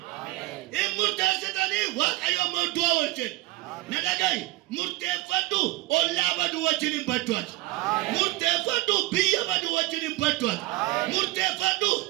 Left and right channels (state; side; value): quieter; left; 18.9 dB